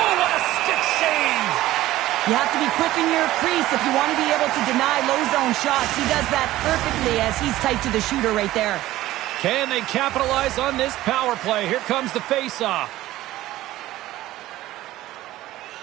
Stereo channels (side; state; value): left; quieter; 15.7 dB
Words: what a stick save. You have to be quick in your crease if you want to be able to deny low zone shots. He does that perfectly as he's tight to the shooter right there. Can they capitalize on this power play? Here comes the face-off.